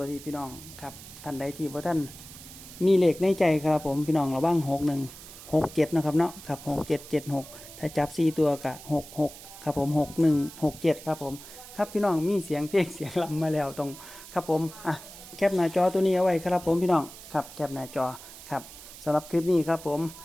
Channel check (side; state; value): right; noise; hiss, 16 dB below the sound